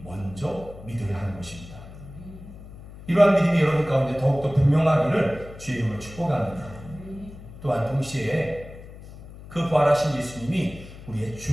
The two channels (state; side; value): noise; left; hum, 16 dB below the sound